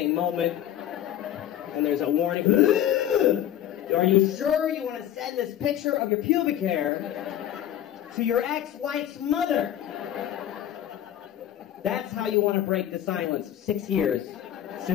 moment, and there's a warning. Are you sure you want to send this picture of your pubic hair to your ex-wife's mother? That's how you want to break the silence of 6 years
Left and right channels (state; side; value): quieter; right; 11.4 dB